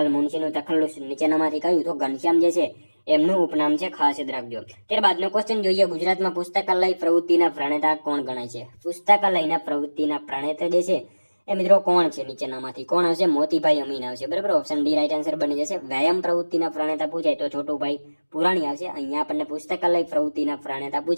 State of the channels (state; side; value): inverted; both; correlation -1.00